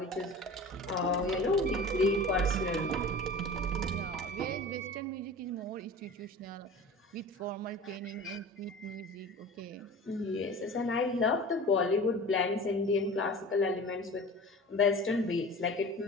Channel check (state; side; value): normal; both; correlation 0.38